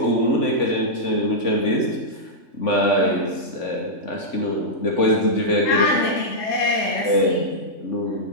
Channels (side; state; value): right; late; 3.5 ms